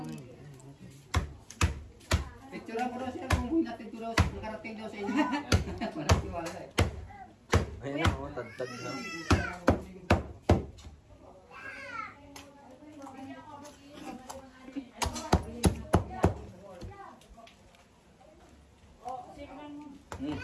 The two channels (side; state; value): both; identical; correlation 1.00